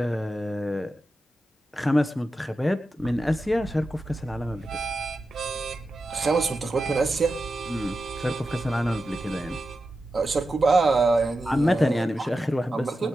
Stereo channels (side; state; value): both; normal; correlation 0.91